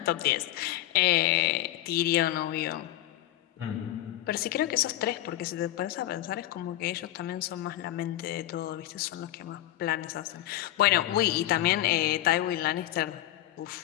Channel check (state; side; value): quieter; right; 14.2 dB